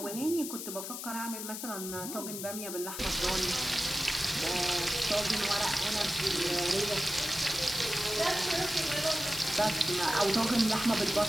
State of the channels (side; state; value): left; noise; hiss, 7 dB below the sound